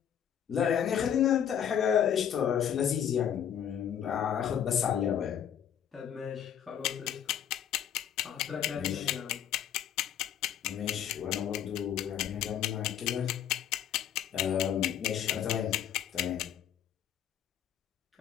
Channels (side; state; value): right; quieter; 9.5 dB